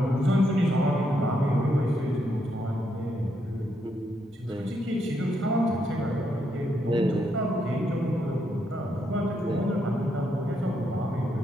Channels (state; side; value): normal; both; correlation 0.78